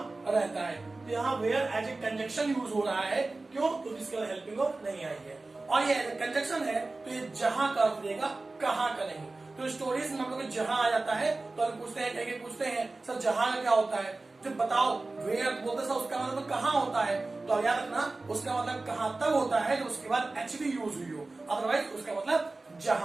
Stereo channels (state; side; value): quieter; left; 3.3 dB